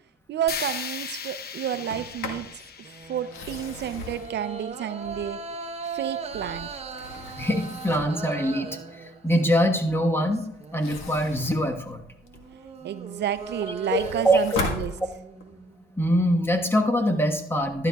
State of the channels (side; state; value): both; normal; correlation 0.59